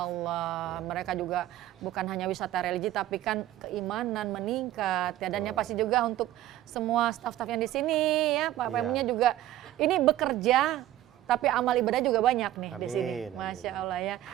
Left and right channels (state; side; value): quieter; left; 13.9 dB